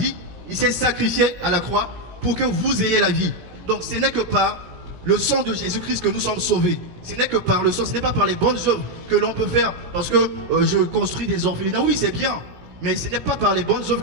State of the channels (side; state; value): left; late; 17 ms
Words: il s'est sacrifié à la croix pour que vous ayez la vie. Donc ce n'est que par le sang de Jésus-Christ que nous sommes sauvés. Ce n'est que par le sang, ce n'est pas par les bonnes œuvres que l'on peut faire. Parce que je construis des orphelinats, oui c'est bien. Mais ce n'est pas par les bonnes œuvres